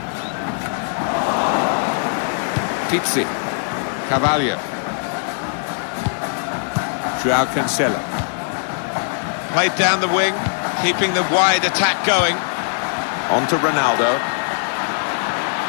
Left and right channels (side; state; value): right; silent; 64 dB below the other